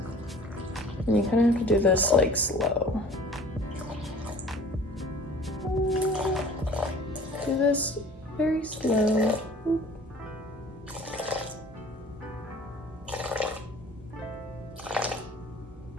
And you kind of have to do this like slow. Do this very slow.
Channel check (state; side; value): normal; both; correlation 0.47